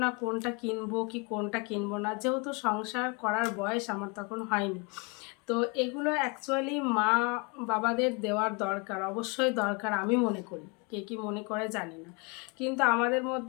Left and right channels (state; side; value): quieter; right; 31.1 dB